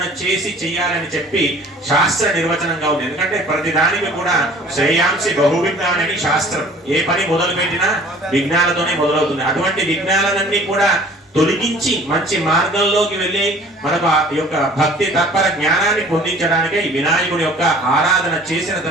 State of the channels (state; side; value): normal; both; correlation 0.50